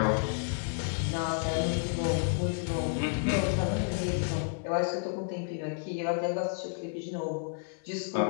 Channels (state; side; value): silent; right; 57 dB below the other